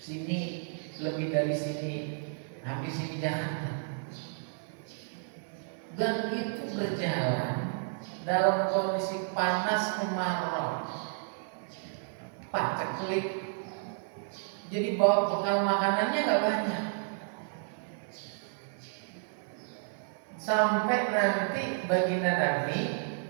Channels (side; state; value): left; silent; 57 dB below the other